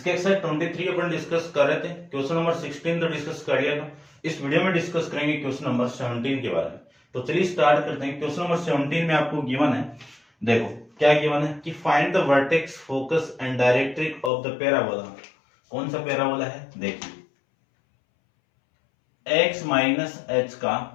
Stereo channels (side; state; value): right; drops out; at 14.3 s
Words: एक्सरसाइज 23 अपन डिस्कस कर रहे थे। क्वेश्चन नंबर 16 तो डिस्कस कर लिया था। इस वीडियो में डिस्कस करेंगे क्वेश्चन नंबर 17 के बारे में। तो चलिए स्टार्ट करते हैं। क्वेश्चन नंबर 17 में आपको गिवन है, देखो क्या गिवन है कि find the vertex, focus and directrix of the parabola. कौन सा पैराबोला है? देखिए, x माइनस एच का